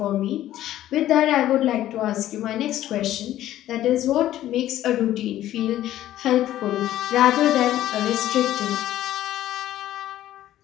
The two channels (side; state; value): right; quieter; 13.3 dB